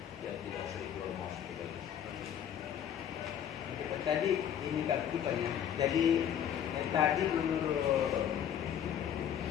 ya tidak sering keluar masuk ke kelas. Tadi ini keaktifannya. Jadi tadi menurut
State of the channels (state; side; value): quieter; right; 9.4 dB